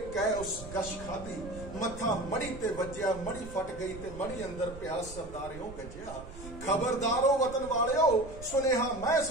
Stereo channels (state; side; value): noise; right; rumble, 14 dB below the sound